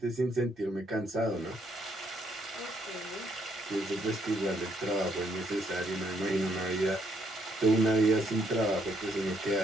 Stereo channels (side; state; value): both; normal; correlation 0.72